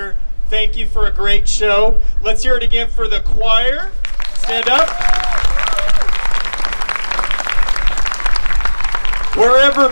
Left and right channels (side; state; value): both; inverted; correlation -1.00